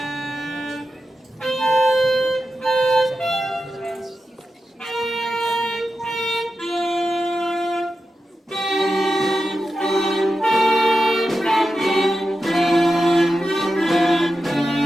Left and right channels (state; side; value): normal; both; correlation 0.91